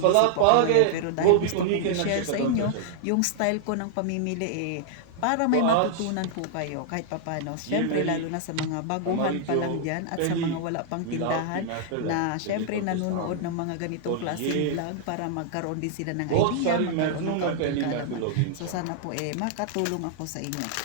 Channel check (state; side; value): different; both; correlation -0.01